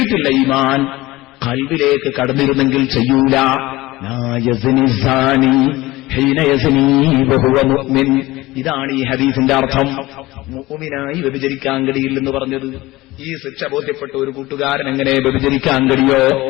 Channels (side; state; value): right; quieter; 19.1 dB